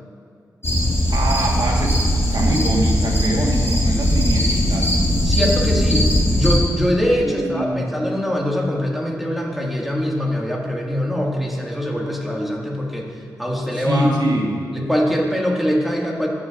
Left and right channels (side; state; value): both; normal; correlation 0.81